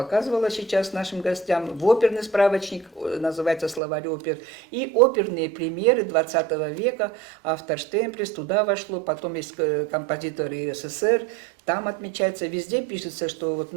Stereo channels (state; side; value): drops out; left; at 3.8 s